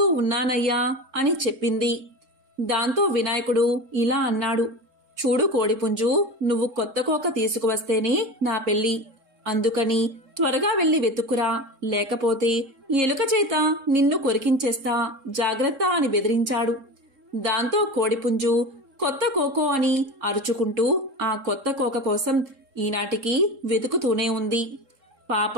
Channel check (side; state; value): left; late; 3.7 ms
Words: ఉన్నానయ్యా అని చెప్పింది. దాంతో వినాయకుడు ఇలా అన్నాడు, చూడు కోడిపుంజు, నువ్వు కొత్త కోక తీసుకువస్తేనే నా పెళ్లి. అందుకని త్వరగా వెళ్లి వెతుక్కురా, లేకపోతే ఎలుక చేత నిన్ను కొరికించేస్తా, జాగ్రత్త అని బెదిరించాడు. దాంతో కోడిపుంజు కొత్త కోకో అని అరుచుకుంటూ ఆ కొత్త కోక కోసం ఈనాటికి వెతుకుతూనే ఉంది.